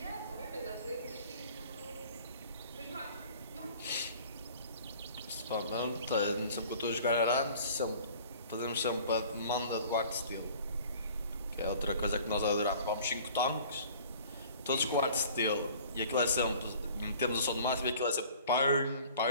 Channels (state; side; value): inverted; both; correlation -0.48